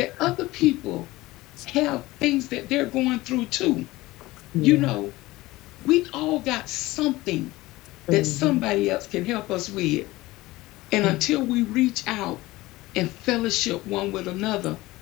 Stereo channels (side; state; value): right; quieter; 19.1 dB